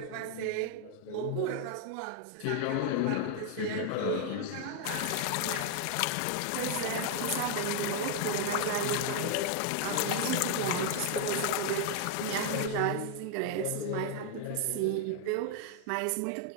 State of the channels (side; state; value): both; different; correlation 0.00